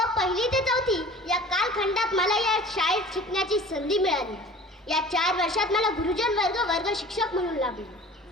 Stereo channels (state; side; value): normal; both; correlation 0.44